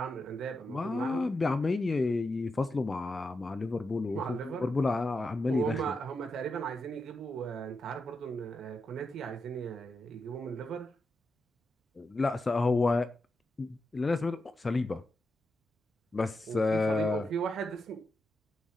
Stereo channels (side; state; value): both; normal; correlation 0.86